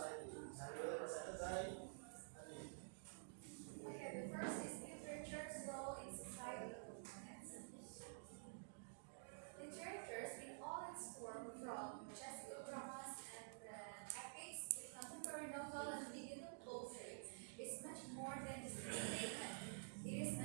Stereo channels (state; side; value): silent; left; digital silence